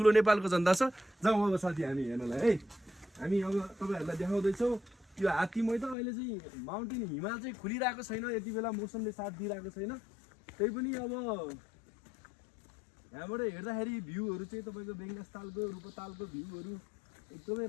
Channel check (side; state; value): right; drops out; at 6.0 s